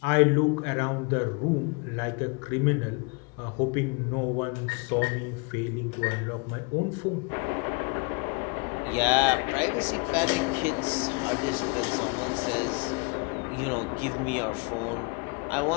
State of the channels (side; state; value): right; quieter; 31.8 dB